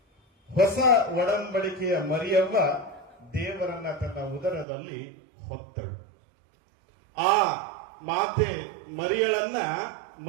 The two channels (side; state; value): left; drops out; at 4.7 s